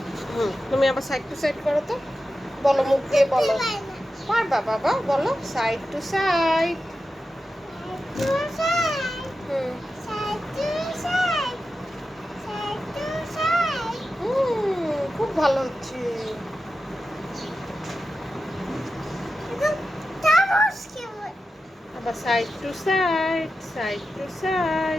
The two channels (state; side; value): normal; both; correlation 0.92